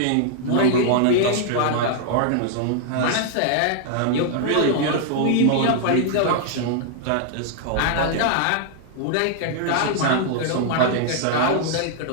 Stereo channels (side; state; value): both; different; correlation 0.00